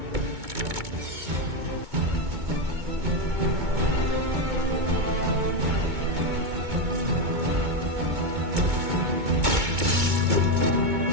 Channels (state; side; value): late; left; 2.2 ms